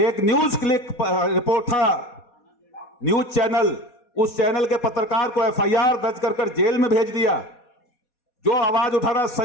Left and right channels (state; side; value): late; right; 4.2 ms